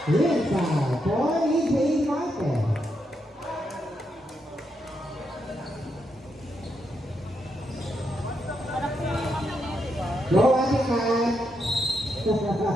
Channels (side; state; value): both; normal; correlation 0.81